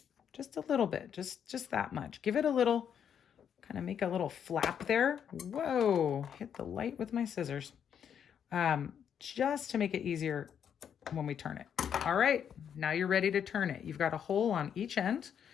just a little bit, just that much. Give it a little, kind of make a little flap there. Whoa, hit the light with my scissors. Just to make it easier when we turn it. All right, now you're ready to turn it. You've got a hole on each end.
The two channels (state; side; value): quieter; right; 8.3 dB